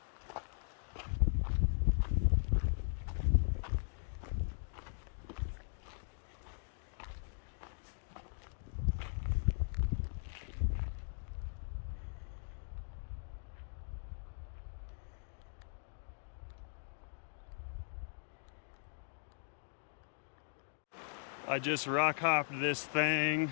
I just rock hopped this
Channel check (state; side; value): silent; right; digital silence